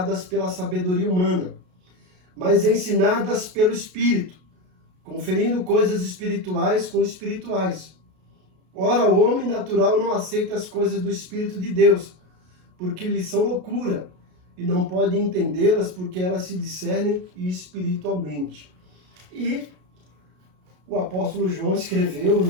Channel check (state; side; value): late; left; 33 ms